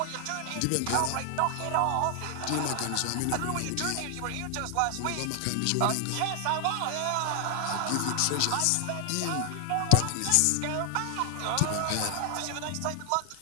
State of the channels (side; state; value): both; different; correlation 0.00